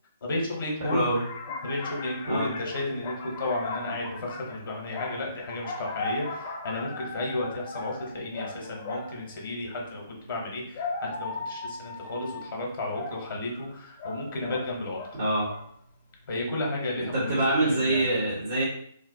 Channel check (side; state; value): both; inverted; correlation -0.65